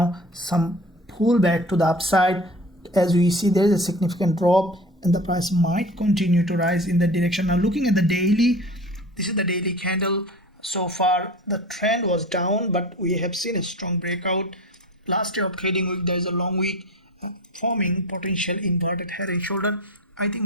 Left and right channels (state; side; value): normal; both; correlation 0.37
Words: some pullback to the upside. As we see, there is a significant drop and the price might continue to rise in that direction. Now looking at the daily, this is the daily candle. So far the trend was down, but we have seen a strong breakout. Last day of trading week, there is a long week forming potential inverted head and shoulder. I